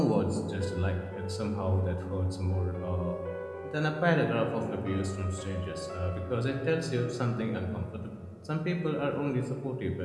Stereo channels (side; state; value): both; identical; correlation 1.00